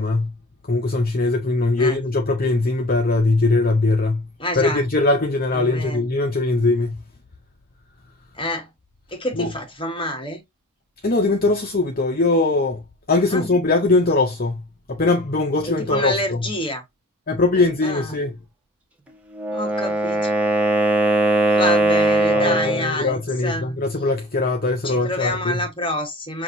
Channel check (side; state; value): both; normal; correlation 0.42